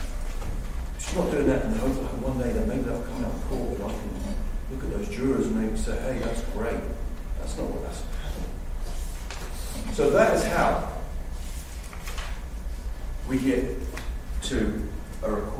She's not doing that in the hope that one day that maybe they'll come out of court and I can look at those jurors and they can say, hey, that's great. That's not what that's happening. So that is how we get to a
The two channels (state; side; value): identical; both; correlation 1.00